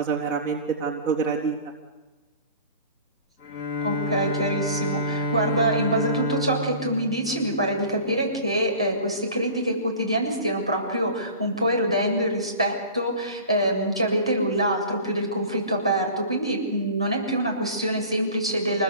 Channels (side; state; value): both; inverted; correlation -0.41